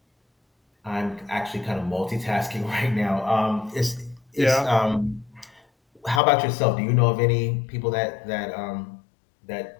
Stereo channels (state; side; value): drops out; right; at 6.2 s